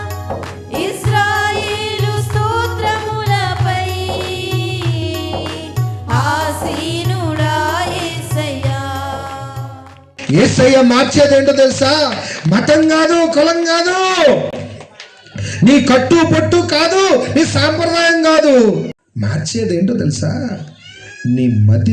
ఇశ్రాయేలు స్తోత్రములపై ఆసీనుడా యేసయ్యా. యేసయ్య మార్చేదేంటో తెలుసా? మతం కాదు, కులం కాదు, నీ కట్టు పొట్టు కాదు, నీ సాంప్రదాయం కాదు. మార్చేదేంటో తెలుసా? నీ మతి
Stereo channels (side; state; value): both; identical; correlation 1.00